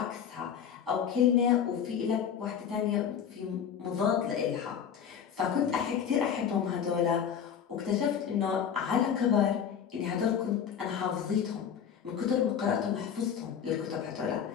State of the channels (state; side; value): quieter; right; 8.1 dB